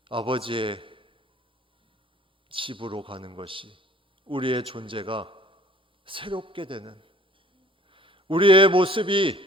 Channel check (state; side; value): normal; both; correlation 0.53